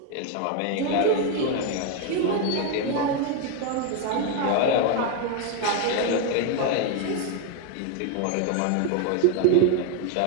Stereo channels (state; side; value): different; both; correlation 0.01